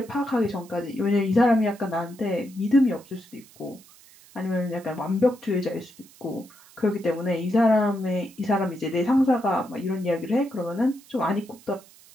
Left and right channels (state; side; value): noise; right; hiss, 25 dB below the sound